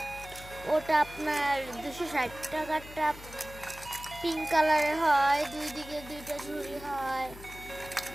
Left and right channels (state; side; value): noise; left; hum, 16 dB below the sound